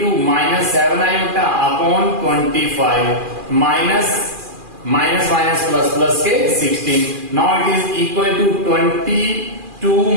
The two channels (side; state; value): left; late; 2.4 ms